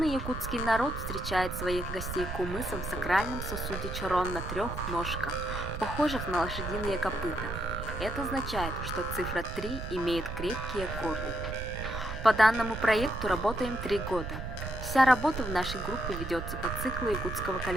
якутский народ встречает своих гостей кумысом в сакральном сосуде чорон на 3 ножках, похожих на лошадиные копыта. Это означает, что цифра 3 имеет крепкие корни. По данному проекту работаем 3 года. Вся работа в нашей группе ведется по циклу якутского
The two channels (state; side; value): noise; right; rumble, 7 dB below the sound